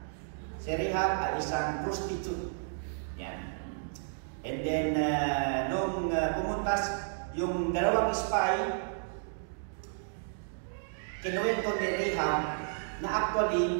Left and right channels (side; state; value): left; silent; digital silence